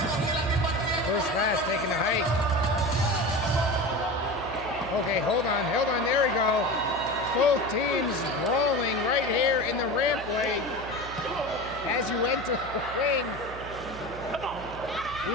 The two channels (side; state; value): right; noise; hum, 13 dB below the sound